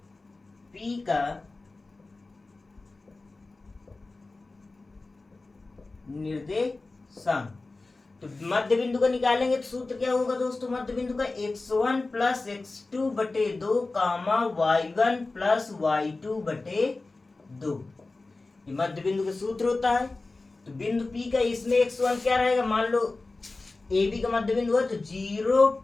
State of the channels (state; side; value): quieter; right; 3.4 dB